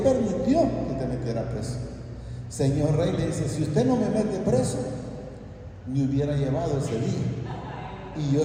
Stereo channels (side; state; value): both; identical; correlation 1.00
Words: que te metiera preso? Señor rey, le dice: si usted no me mete preso, me hubiera llevado ese día y yo